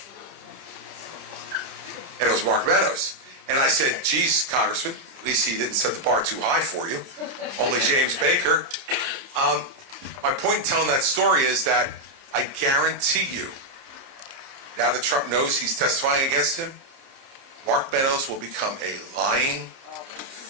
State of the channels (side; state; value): left; late; 30 ms